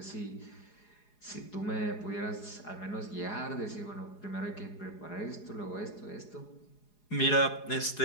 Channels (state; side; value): late; right; 4.8 ms